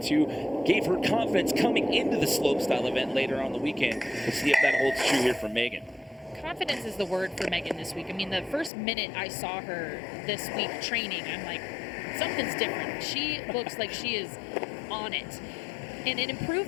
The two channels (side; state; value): right; drops out; at 8.7 s